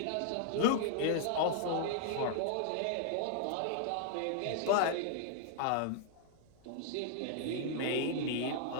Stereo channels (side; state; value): both; different; correlation 0.00